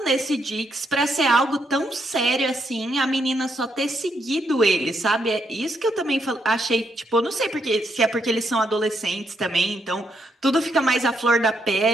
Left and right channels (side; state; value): both; normal; correlation 0.77